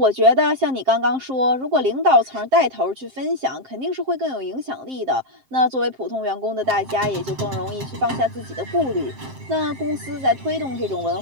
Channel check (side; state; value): left; late; 7.6 ms